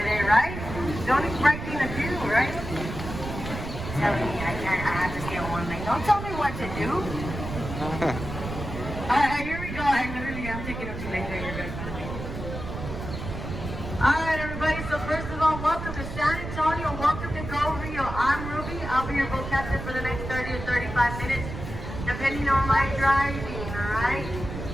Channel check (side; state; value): right; noise; rumble, 7 dB below the sound